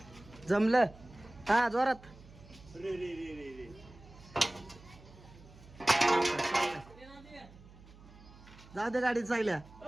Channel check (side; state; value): right; noise; hum, 21 dB below the sound